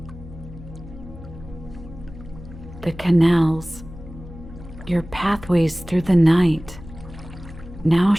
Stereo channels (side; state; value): left; noise; hum, 15 dB below the sound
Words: The canals, your pathways through the night, now